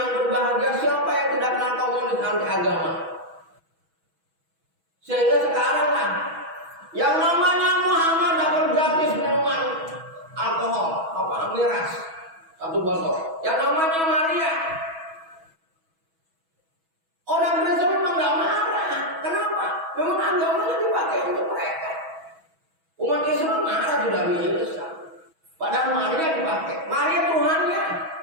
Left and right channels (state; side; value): late; left; 6.2 ms